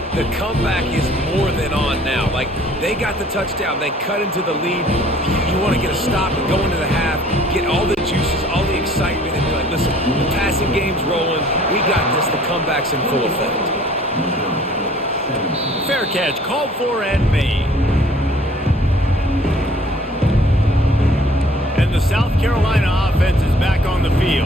the comeback is more than on now. Like, they got the touchdown. They cut into the lead. You want to get a stop and go into the half, get all the juices, all the excitement, and be like, listen, the passing game's rolling. We got this. The comeback's in full effect. Fair catch, called for and made. And the South Carolina offense is back on the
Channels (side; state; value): both; normal; correlation 0.55